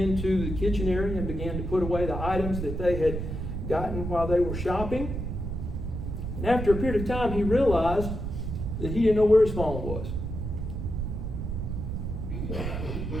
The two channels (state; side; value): noise; right; rumble, 4 dB below the sound